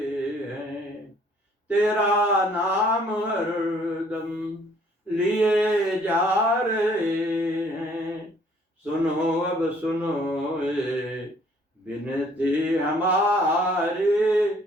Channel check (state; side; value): normal; both; correlation 0.60